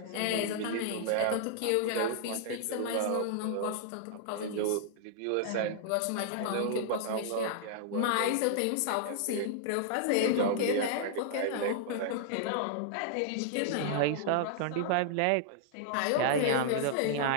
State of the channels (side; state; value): both; different; correlation -0.01